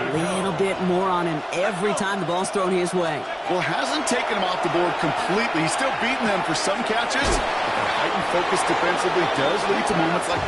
little bit more on him every time the ball's thrown his way. Well, hasn't taken him off the board completely. He's still beating them for some catches. But Heightened focus defensively does lead to moments like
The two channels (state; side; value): identical; both; correlation 1.00